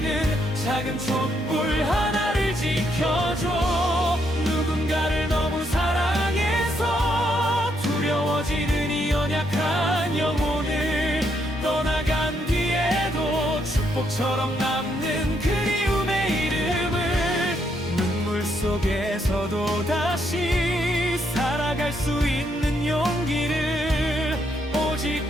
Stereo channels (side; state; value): both; normal; correlation 0.75